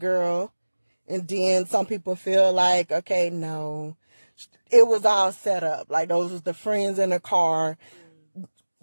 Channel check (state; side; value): inverted; both; correlation -1.00